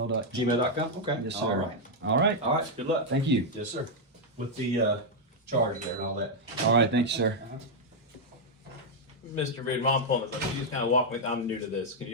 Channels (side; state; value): both; normal; correlation -0.02